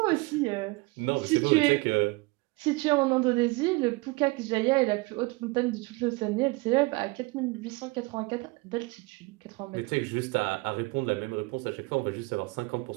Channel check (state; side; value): quieter; left; 24.8 dB